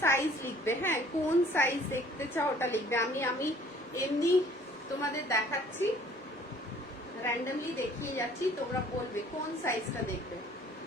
সাইজ লিখবে, হ্যাঁ, কোন সাইজ দেখতে চাও ওটা লিখবে। আমি এমনি তোমাদের দেখাচ্ছি, র্যান্ডমলি দেখিয়ে যাচ্ছি, তোমরা বলবে কোন সাইজটা দেখবে।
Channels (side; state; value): both; normal; correlation 0.55